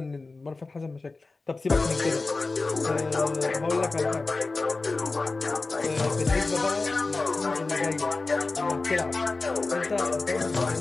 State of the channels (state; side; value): quieter; right; 3.6 dB